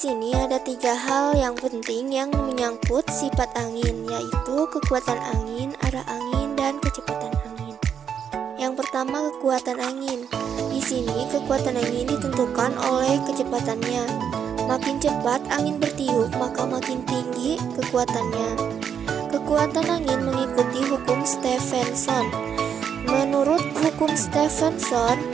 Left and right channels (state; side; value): quieter; left; 7.9 dB